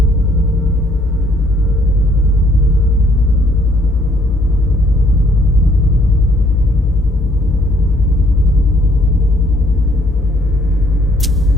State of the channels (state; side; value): normal; both; correlation 0.65